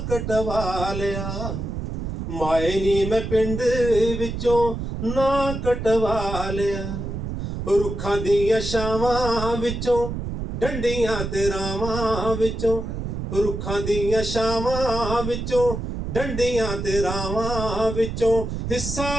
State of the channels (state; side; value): noise; right; rumble, 5 dB below the sound